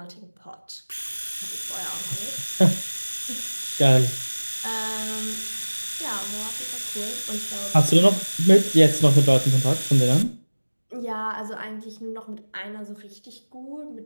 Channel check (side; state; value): both; inverted; correlation -1.00